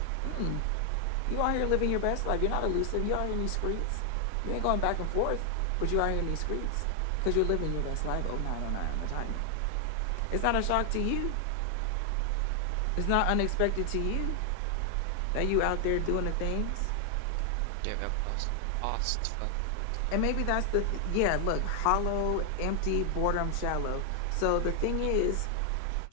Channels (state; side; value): different; both; correlation 0.00